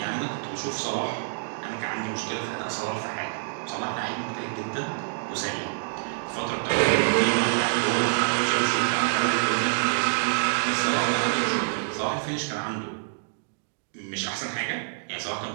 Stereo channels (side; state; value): left; silent; digital silence